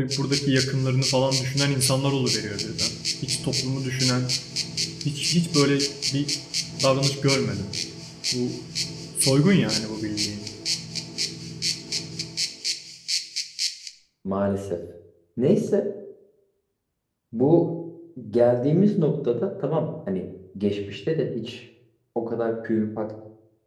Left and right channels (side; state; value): both; identical; correlation 1.00